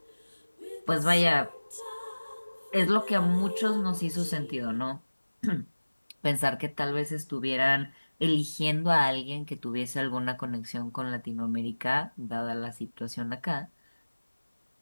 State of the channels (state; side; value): inverted; both; correlation -1.00